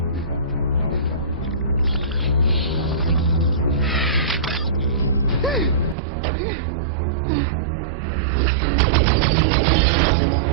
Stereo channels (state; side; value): drops out; left; at 6.0 s